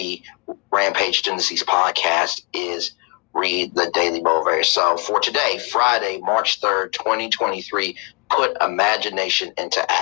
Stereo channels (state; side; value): quieter; right; 32.9 dB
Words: Rampage Tendencies podcast is read the Daily Motivator. So for today, Friday, March 3rd, 2023, put imagination into